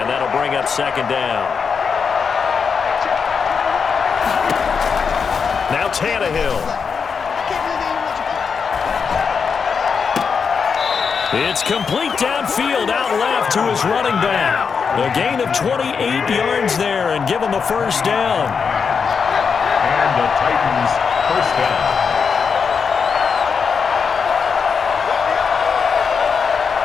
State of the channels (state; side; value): quieter; right; 5.9 dB